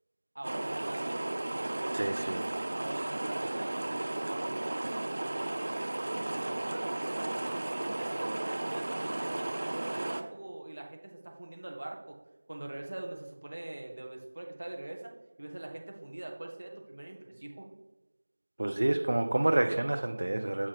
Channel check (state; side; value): inverted; both; correlation -1.00